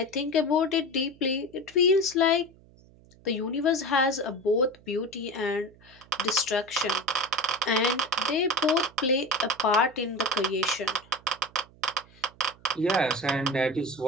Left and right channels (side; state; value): right; noise; hum, 26 dB below the sound